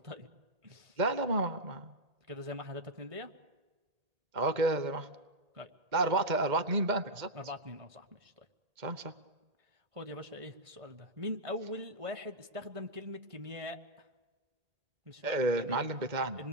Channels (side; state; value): left; late; 1.8 ms